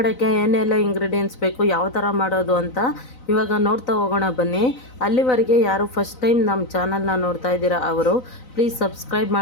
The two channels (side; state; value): right; late; 3.9 ms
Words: ಏನೆಲ್ಲ ಇಂಗ್ರೀಡಿಯೆಂಟ್ಸ್ ಬೇಕು, ಯಾವ ಥರ ಮಾಡೋದು ಅಂತ ಇವಾಗ ನೋಡ್ತಾ ಹೋಗೋಣ ಬನ್ನಿ. ಅಲ್ಲಿವರೆಗೆ ಯಾರು ಫಸ್ಟ್ ಟೈಮ್ ನಮ್ಮ ಚಾನಲ್ನ ನೋಡ್ತಾ ಇದ್ದೀರಾ ಅವರು ಪ್ಲೀಸ್ ಸಬ್ಸ್ಕ್ರೈಬ್